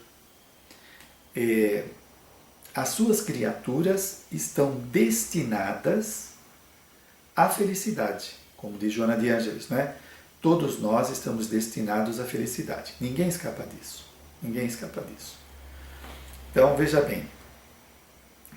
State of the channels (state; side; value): identical; both; correlation 1.00